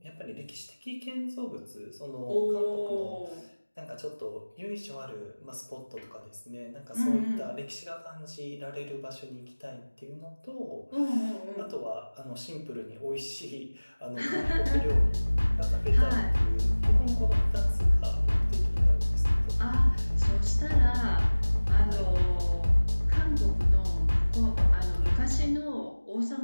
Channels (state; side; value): inverted; both; correlation -1.00